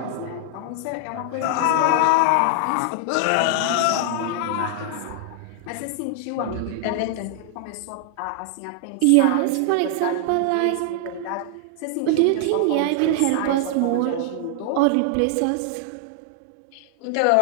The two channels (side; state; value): both; different; correlation 0.00